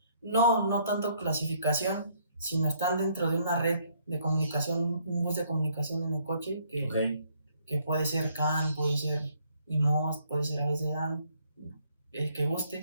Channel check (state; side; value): inverted; both; correlation -0.67